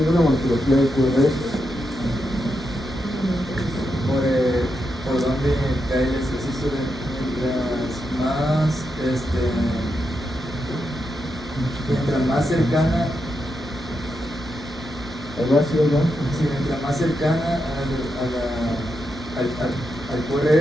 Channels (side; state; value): both; normal; correlation 0.85